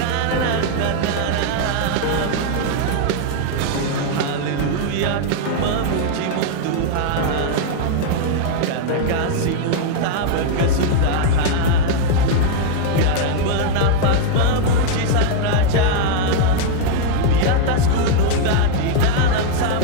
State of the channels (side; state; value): both; different; correlation 0.00